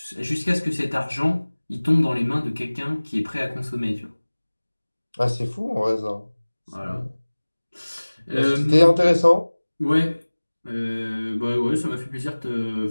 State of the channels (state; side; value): inverted; both; correlation -1.00